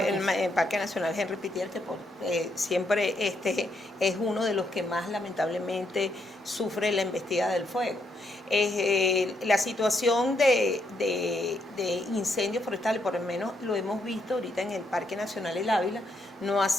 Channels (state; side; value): normal; both; correlation 0.77